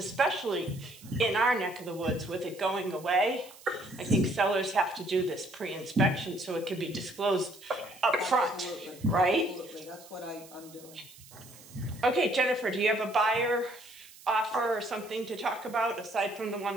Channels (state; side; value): noise; right; hiss, 21 dB below the sound